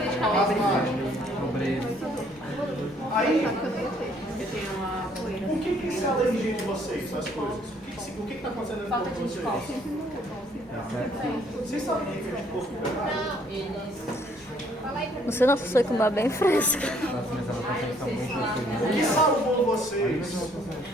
Asmático. pobreza. Aí, por que isso é alergia de vocês, essas coisas? O que está acontecendo dentro de vocês? Vocês sabem o que é anticorpo? Você não foi com uma bem fresca. Nossa, minhas anotações estão muito O que felizes. salvou vocês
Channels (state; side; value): normal; both; correlation 0.64